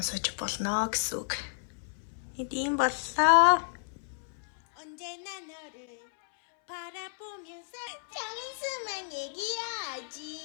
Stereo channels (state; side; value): silent; right; 57 dB below the other